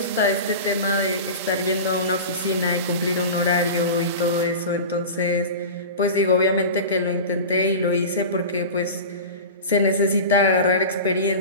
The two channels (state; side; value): inverted; both; correlation -0.30